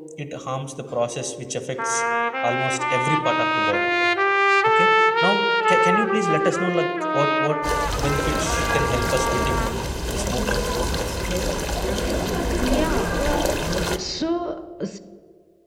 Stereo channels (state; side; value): identical; both; correlation 1.00